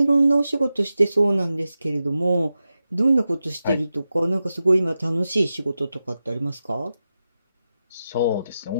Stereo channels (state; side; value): inverted; both; correlation -0.92